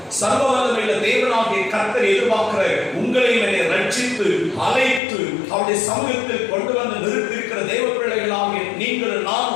சர்வ வல்லமையுள்ள தேவனாகிய கர்த்தர் எதிர்பார்க்கிற, உங்களை என்னை ரட்சித்து அழைத்து அவருடைய சமூகத்தில் கொண்டு வந்து நிறுத்தியிருக்கிற தேவ பிள்ளைகளாகிய நீங்கள்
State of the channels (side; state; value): right; drops out; at 5.0 s